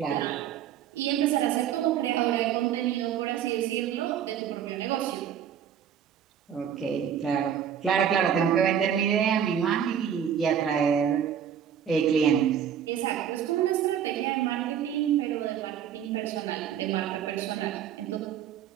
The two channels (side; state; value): left; quieter; 8.9 dB